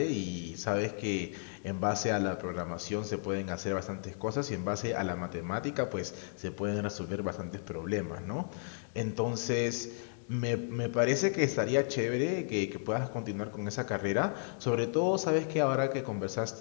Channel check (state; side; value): silent; right; digital silence